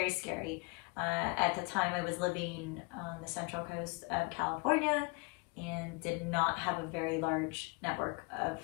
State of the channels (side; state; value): right; quieter; 30.5 dB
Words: scary. At the time, I was living on the central coast of California and did not have a very large network of